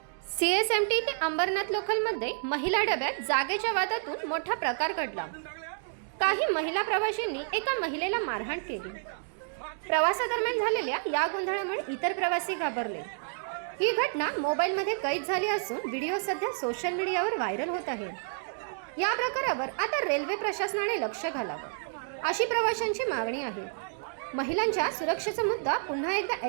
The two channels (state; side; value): silent; left; digital silence